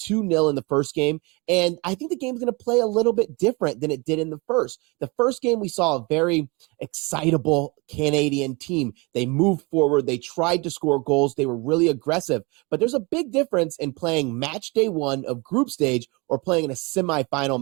2-0 in the first game, and I think the game's going to play a little bit different than it did in the first. The first game, we saw a very excitable Canadian team. They moved forward. They tried to score goals. They were really aggressive, but there's a big difference in playing match day one of group stage or playing in a semifinal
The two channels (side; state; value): left; quieter; 27.5 dB